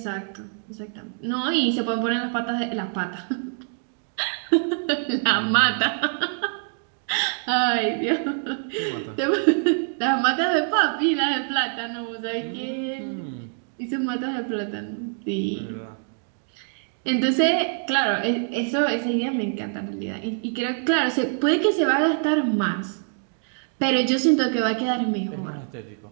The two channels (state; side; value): silent; left; 62 dB below the other